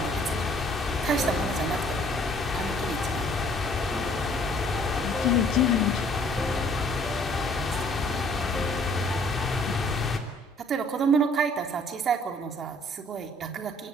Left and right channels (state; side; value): normal; both; correlation 0.59